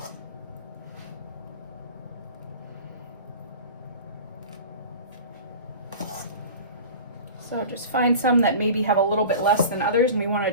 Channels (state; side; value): inverted; both; correlation -0.36